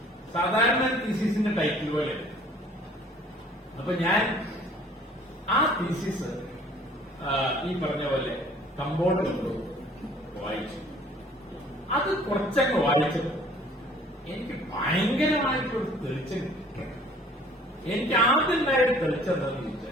സാധാരണ തീസിസിന്റെ ടൈറ്റിൽ പോലെ. അപ്പൊ ഞാൻ ആ തീസിസ് ഈ പറഞ്ഞ പോലെ കമ്പോർഡ് കൊണ്ട് വായിച്ചു. അത് കുറച്ചങ്ങ് വായിച്ചത് എനിക്ക് ഭയങ്കരമായിട്ടൊരു തെളിച്ചം. എനിക്ക് ആദ്യം ഉണ്ടായൊരു തെളിച്ചെന്താന്ന്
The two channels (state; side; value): normal; both; correlation 0.54